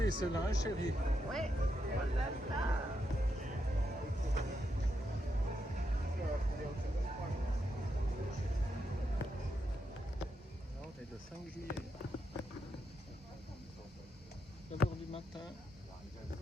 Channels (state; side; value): normal; both; correlation 0.83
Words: celle-là, hein, chérie. Ouais, voilà ça. Là, on est le 5 juillet. 9h du matin